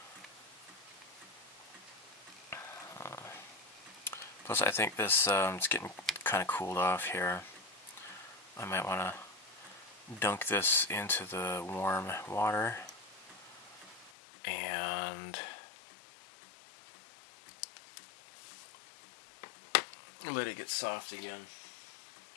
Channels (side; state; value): right; drops out; at 14.1 s